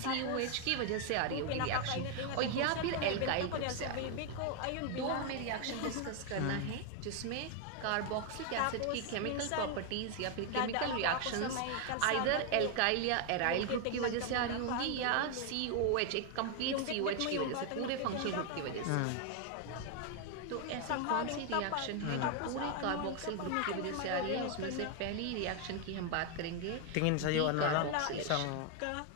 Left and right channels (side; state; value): both; different; correlation 0.01